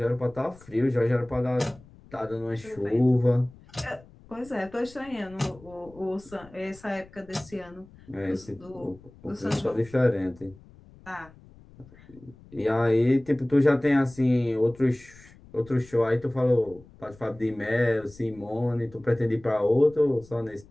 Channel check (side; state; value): left; noise; rumble, 23 dB below the sound